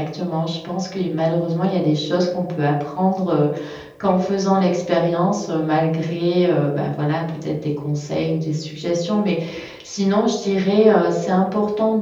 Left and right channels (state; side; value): identical; both; correlation 1.00